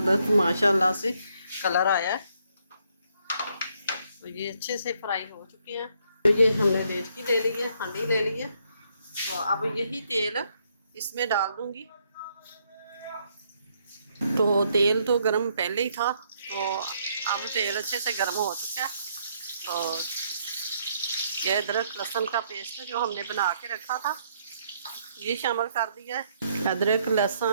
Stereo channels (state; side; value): inverted; both; correlation -0.71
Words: माशाल्लाह से कलर आया है। तो ये अच्छे से फ्राई हो चुके हैं। तो ये हमने देचकी ले ली है, हांडी ले ली है। तो अब यही तेल इसमें डाल दूंगी। तो तेल तो गर्म पहले ही था, तो अब तेल अच्छे से गर्म हो चुका है। तो ये अदरक लहसुन का पेस्ट जो हमने बना के रखा था ये शामिल कर दिया है। अदरक